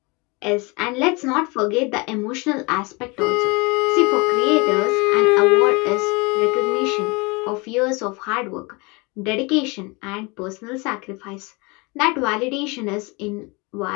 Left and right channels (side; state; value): right; quieter; 27.4 dB